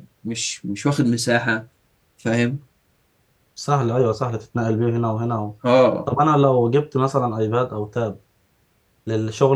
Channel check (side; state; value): both; identical; correlation 1.00